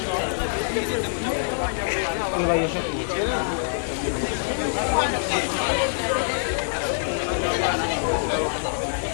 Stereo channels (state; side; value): silent; right; 56 dB below the other